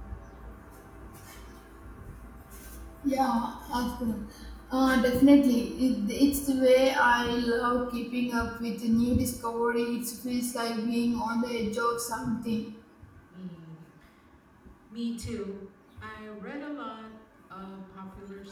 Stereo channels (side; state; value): both; identical; correlation 1.00